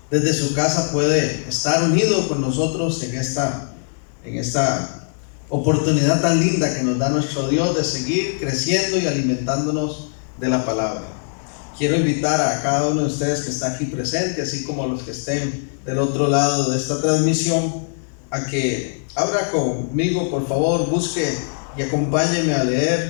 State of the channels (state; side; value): silent; right; digital silence